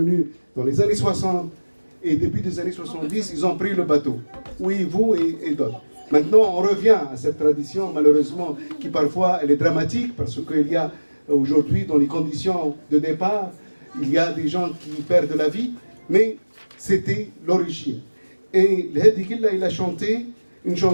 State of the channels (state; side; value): inverted; both; correlation -1.00